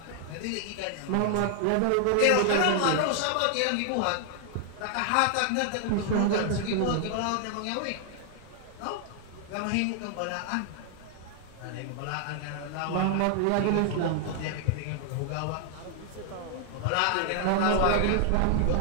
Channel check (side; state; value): both; different; correlation 0.00